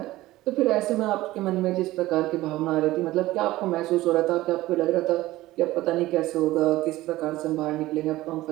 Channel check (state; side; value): quieter; left; 17.1 dB